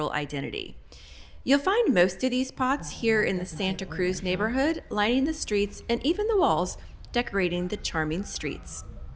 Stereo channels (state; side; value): identical; both; correlation 1.00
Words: identity. You'll find most of these pots here in the Santa Cruz neighborhood, lining the streets and even the walls, decorating the charming streets.